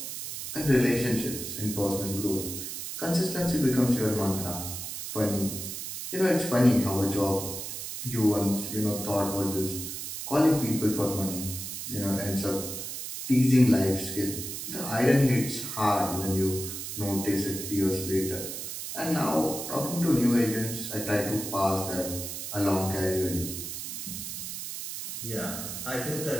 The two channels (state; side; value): noise; right; hiss, 7 dB below the sound